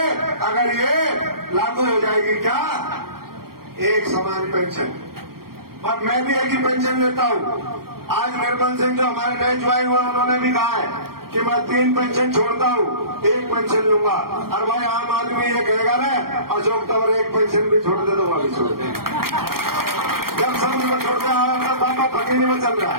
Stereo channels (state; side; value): late; left; 0.94 ms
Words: अगर ये लागू हो जाएगी। क्या? एक समान पेंशन। और मैं भी एक ही पेंशन लेता हूँ। आज निर्मल सिंह जो हमारे नए ज्वाइन हुए, उन्होंने भी कहा है कि मैं 3 पेंशन छोड़ता हूँ, 1 पेंशन लूंगा। और भाई आम आदमी ये कहेगा ना, अशोक तंवर 1 पेंशन भी छोड़ दे तो वह भी छोड़ दे। जब समझ में छोड़ते हैं, बाबा फकीरी में चल रहा